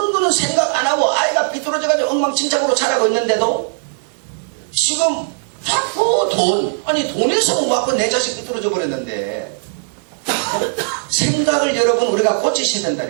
거는 생각 안 하고 아이가 삐뚤어져가지고 엉망진창으로 자라고 있는데도 지금 자꾸 돈에서 못 받고 내 자식 삐뚤어져 버렸는데 생각을 여러분 우리가 고치셔야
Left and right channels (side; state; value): left; silent; digital silence